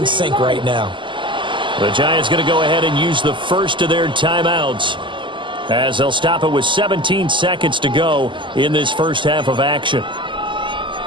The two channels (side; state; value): left; late; 0.24 ms